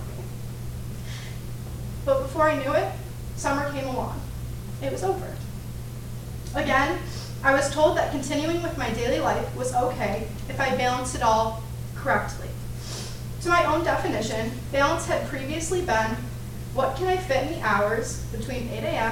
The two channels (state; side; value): identical; both; correlation 1.00